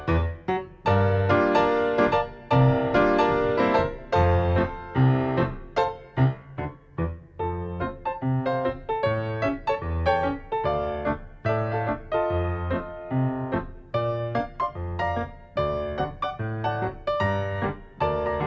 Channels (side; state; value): both; identical; correlation 1.00